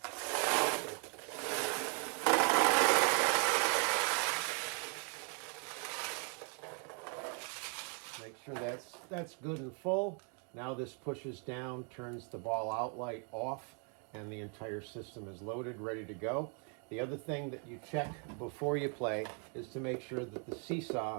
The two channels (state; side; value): quieter; left; 37.7 dB